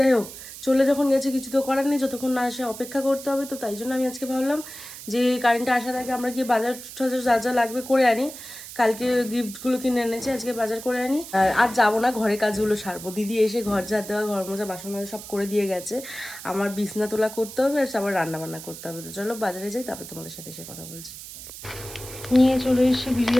হোক, চলে যখন গেছে কিছু তো করার নেই, যতক্ষণ না আসে অপেক্ষা করতে হবে। তো তাই জন্য আমি আজকে ভাবলাম যে কারেন্টটা আসার আগে আমরা গিয়ে বাজার টাজার যা যা লাগবে করে আনি। কালকে গিফটগুলো কিনে এনেছি, আজকে বাজার করে আনি। আর যাবো না, ঘরের কাজগুলো সারবো। দিদি এসে ঘর ঝাড় দেওয়া, ঘর মোজা, বাসন মাজা সব করে দিয়ে গেছে। আমার বিছনা তোলা করতে হবে, আর আবার রান্না বান্না করতে হবে। তো চলো বাজারে যাই, তারপর তোমাদের সাথে এসে কথা বলছি। নিয়ে চলে এসে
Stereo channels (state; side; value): noise; right; hiss, 13 dB below the sound